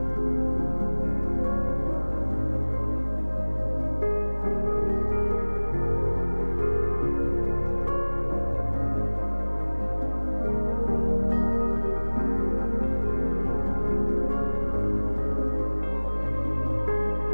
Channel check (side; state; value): both; inverted; correlation -1.00